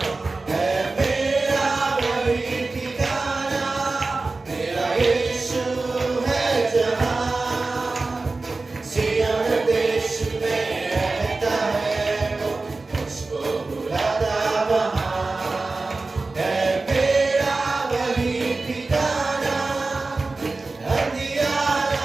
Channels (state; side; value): quieter; left; 3.5 dB